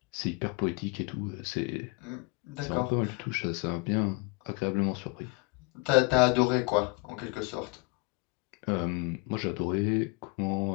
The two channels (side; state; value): right; quieter; 26.9 dB